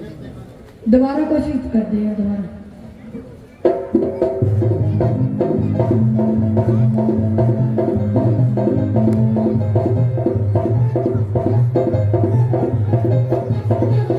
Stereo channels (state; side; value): identical; both; correlation 1.00